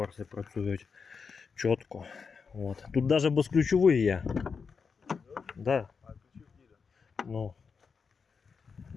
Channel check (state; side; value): quieter; right; 5.5 dB